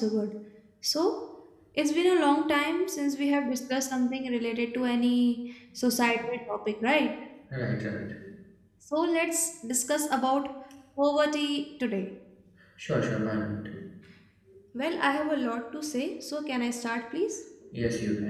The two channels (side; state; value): both; identical; correlation 1.00